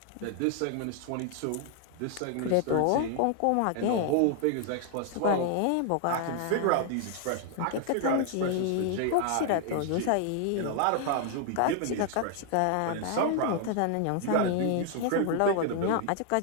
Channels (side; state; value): both; different; correlation 0.00